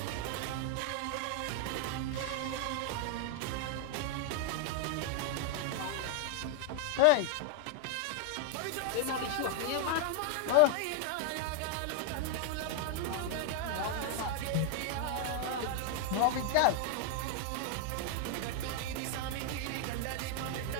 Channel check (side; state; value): both; different; correlation 0.00